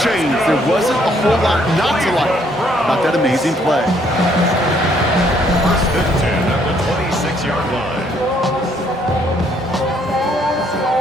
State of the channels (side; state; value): both; normal; correlation 0.67